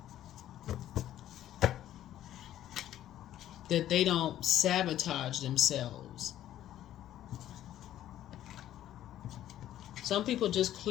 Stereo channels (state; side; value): quieter; right; 12.3 dB